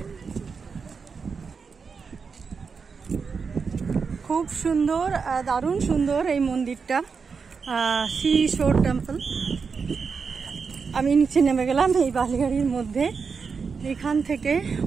খুব সুন্দর, দারুণ সুন্দর এই মন্দিরটা, সি শোর টেম্পল। আমি নিচে নেমে গেলাম এই বালিগাড়ির মধ্যে। এখান থেকে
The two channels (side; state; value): left; quieter; 5.4 dB